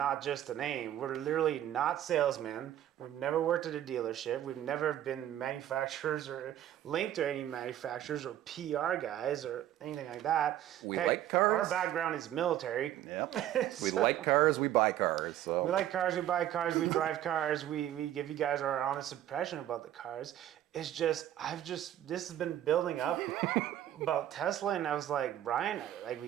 just a name. We're literally not salesmen. We've never worked at a dealership. We've never been manufacturers or linked to any manufacturers or PR guys or anything like that. We like cars. Our background is military. Yep. We like cars. We buy cars. So we like cars. We buy cars. We drive cars. We give you guys our honest impression about the cars. It's just, this has been building up about Tesla, and I was like, Brian, like,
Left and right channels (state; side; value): quieter; left; 12.1 dB